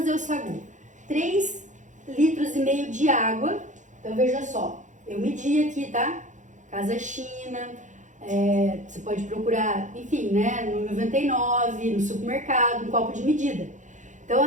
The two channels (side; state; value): left; late; 0.36 ms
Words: o sagu, 3,5 litros de água. Então veja só, eu medi aqui, tá? Casa China, você pode procurar, enfim, né, no 99, no supermercado, um copo de medida. Então